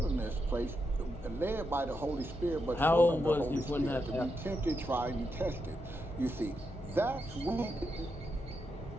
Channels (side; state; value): both; normal; correlation 0.84